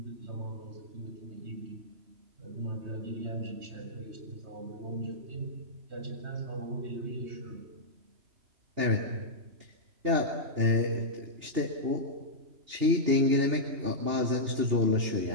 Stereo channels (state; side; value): late; left; 2.8 ms